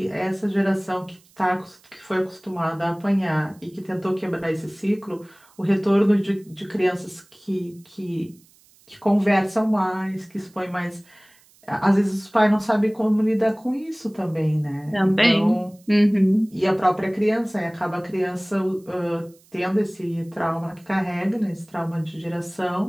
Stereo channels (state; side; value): noise; right; hiss, 30 dB below the sound